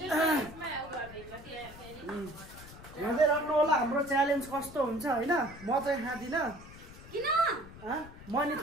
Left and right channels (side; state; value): left; noise; rumble, 17 dB below the sound